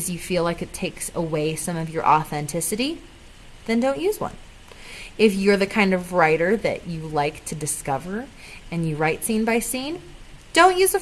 you feel like it takes away some of your authenticity, then don't use one. If you're the kind of writer that you like to discover and you write scene by scene, don't use a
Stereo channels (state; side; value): identical; both; correlation 1.00